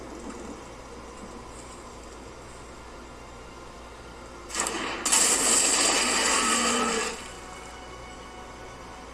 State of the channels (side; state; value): both; identical; correlation 1.00